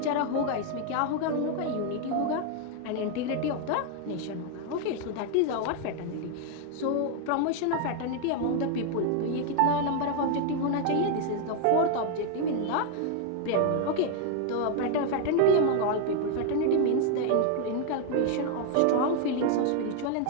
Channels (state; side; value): different; both; correlation 0.00